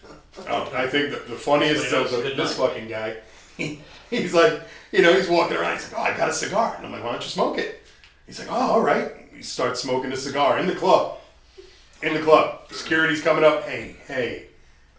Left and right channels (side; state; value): both; identical; correlation 1.00